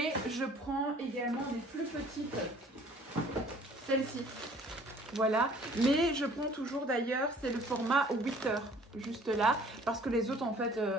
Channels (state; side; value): normal; both; correlation 0.54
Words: je prends également des plus petites, celles-ci, voilà, mais je prends toujours d'ailleurs, c'est le format 8 heures juste là parce que les autres en fait